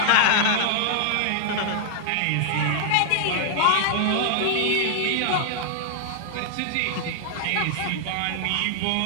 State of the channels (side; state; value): both; different; correlation 0.00